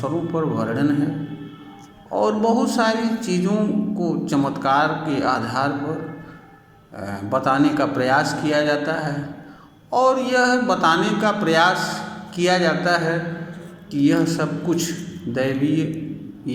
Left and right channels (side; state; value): both; identical; correlation 1.00